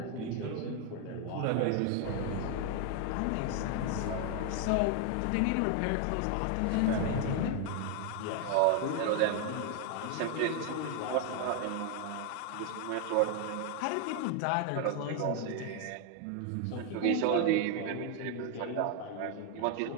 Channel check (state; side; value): different; both; correlation 0.00